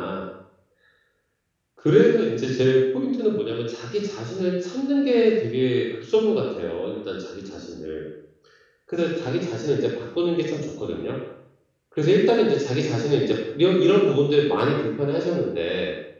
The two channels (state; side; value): identical; both; correlation 1.00